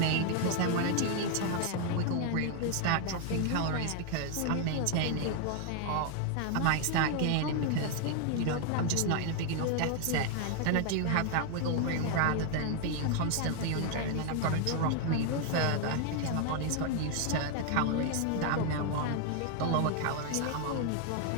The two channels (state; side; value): different; both; correlation 0.00